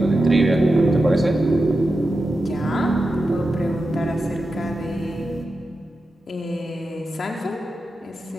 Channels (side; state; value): both; normal; correlation 0.90